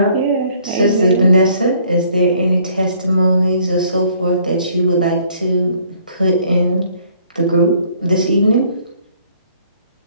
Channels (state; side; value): inverted; both; correlation -0.61